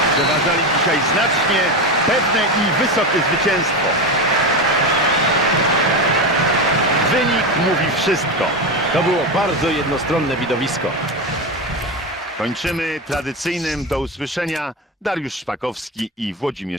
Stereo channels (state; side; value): normal; both; correlation 0.17